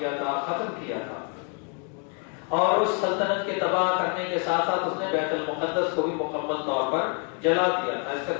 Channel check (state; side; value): quieter; right; 37.8 dB